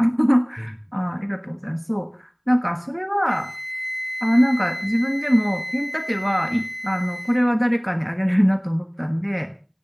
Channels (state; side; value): identical; both; correlation 1.00